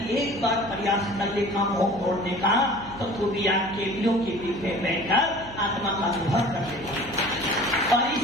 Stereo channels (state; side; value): noise; right; hum, 17 dB below the sound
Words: एक बार प्रयास कर लेगा मोह तोड़ने का, तो तू भी आज केवियों के बीच में बैठकर आत्मा का अनुभव कर लेगा। और